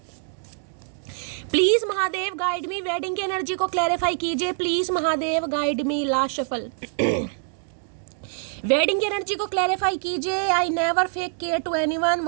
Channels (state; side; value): silent; left; digital silence